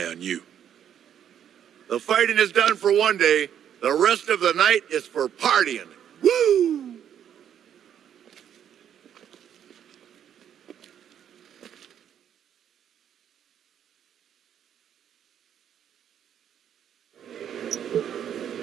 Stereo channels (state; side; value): quieter; left; 9.4 dB